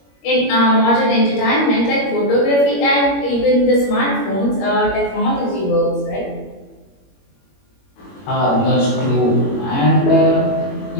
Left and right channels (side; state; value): right; late; 21 ms